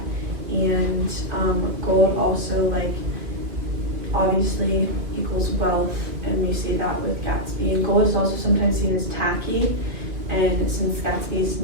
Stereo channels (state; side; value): late; left; 2.3 ms